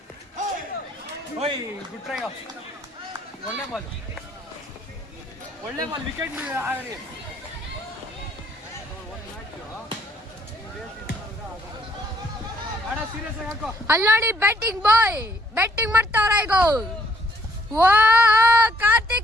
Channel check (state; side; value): normal; both; correlation 0.66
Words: ಒಳ್ಳೆ ಬಾಲ್ ವಿಕೆಟ್ ಅಲ್ಲಿ ನೋಡಿ ಬ್ಯಾಟಿಂಗ್ ಬಾಯ್ ಬ್ಯಾಟಿಂಗ್ ಮಾಡ್ತಾವ್ರ ಈಗ. ಓ